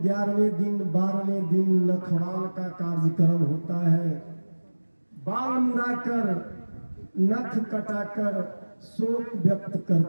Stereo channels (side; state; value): both; inverted; correlation -1.00